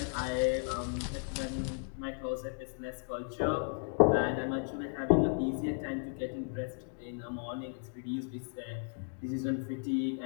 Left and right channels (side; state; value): right; silent; 55 dB below the other